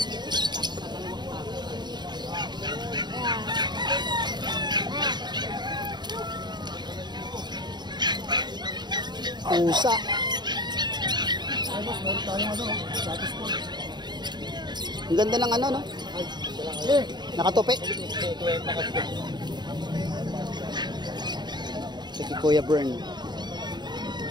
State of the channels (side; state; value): left; late; 0.21 ms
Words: Pusa. Ang ganda ng ano no? Nakatupi. Si Kuya Bern.